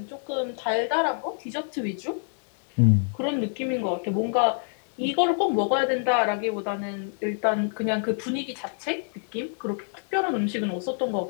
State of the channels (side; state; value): right; silent; 60 dB below the other